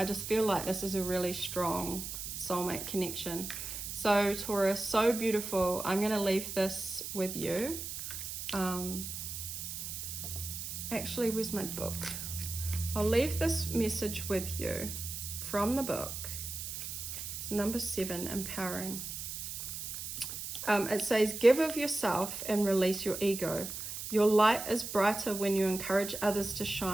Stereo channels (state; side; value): noise; right; hiss, 6 dB below the sound